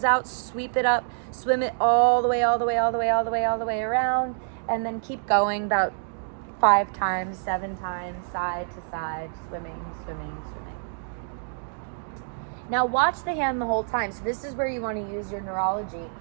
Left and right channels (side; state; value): left; silent; digital silence